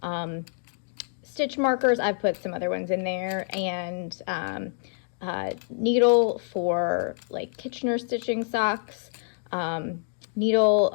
stitch markers. I've put some other ones in there, and needle for like Kitchener stitching socks, needle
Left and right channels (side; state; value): right; silent; 60 dB below the other